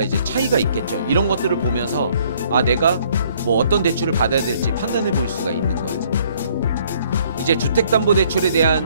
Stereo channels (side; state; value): both; inverted; correlation -0.62